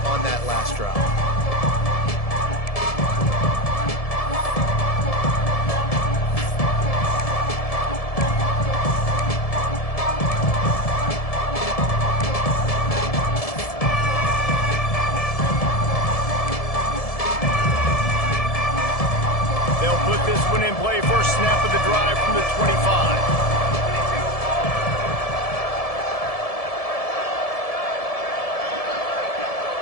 on that last drive. They'll put this one in play. First snap of the drive from the 25.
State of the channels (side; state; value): right; late; 1.7 ms